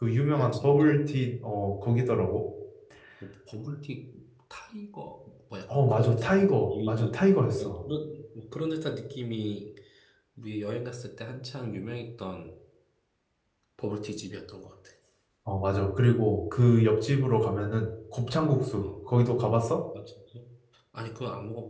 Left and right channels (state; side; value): identical; both; correlation 1.00